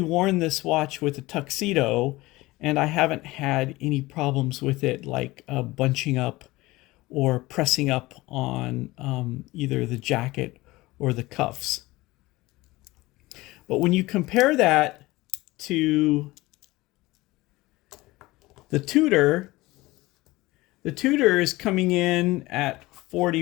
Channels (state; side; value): quieter; right; 19.9 dB